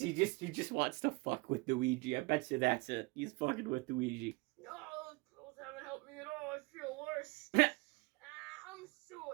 just wants to fuck with Luigi. I bet you that's it. He's fucking with Luigi. No, those pills haven't helped me at all. I feel worse. I'm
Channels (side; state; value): left; quieter; 26.1 dB